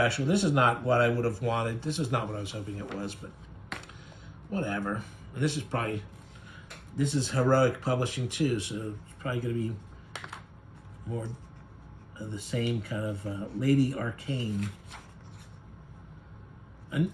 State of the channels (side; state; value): both; identical; correlation 1.00